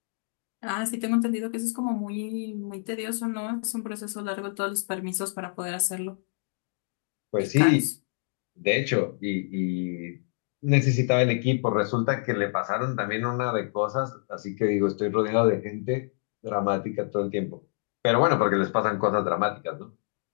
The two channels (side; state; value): right; silent; digital silence